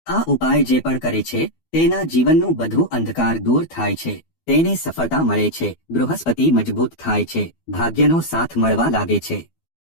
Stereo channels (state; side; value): late; right; 12 ms